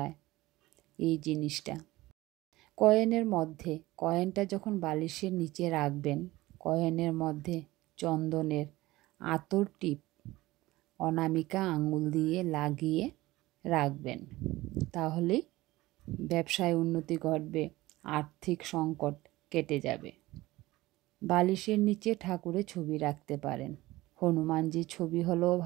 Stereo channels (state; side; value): quieter; left; 18.5 dB